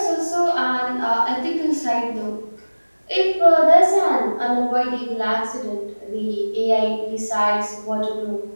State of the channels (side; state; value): both; inverted; correlation -1.00